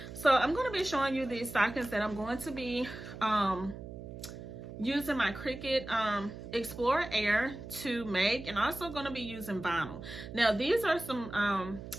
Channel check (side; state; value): right; noise; hum, 11 dB below the sound